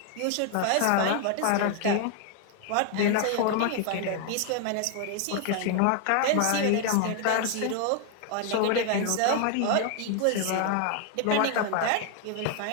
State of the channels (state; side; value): different; both; correlation 0.00